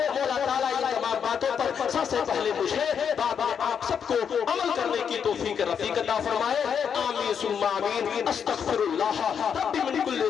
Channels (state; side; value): quieter; right; 7.4 dB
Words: مولا تعالیٰ ان تمام باتوں پر سب سے پہلے مجھے بعد میں آپ سب کو عمل کرنے کی توفیق رفیق عطا فرمائے۔ آمین ثم آمین۔ استغفر اللہ ربی من کل